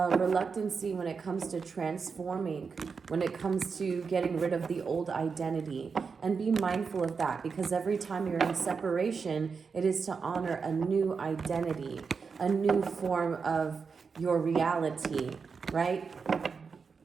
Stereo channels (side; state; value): left; quieter; 5.4 dB